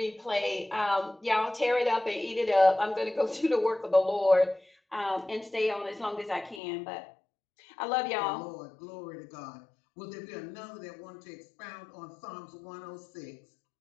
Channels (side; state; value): right; drops out; at 6.6 s